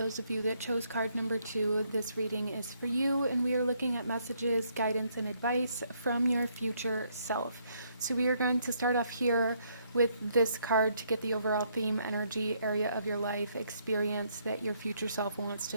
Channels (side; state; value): both; inverted; correlation -0.71